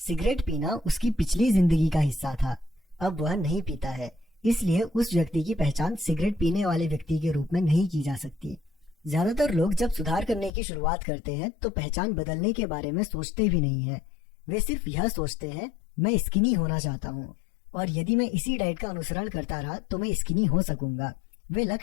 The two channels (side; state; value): right; drops out; at 10.5 s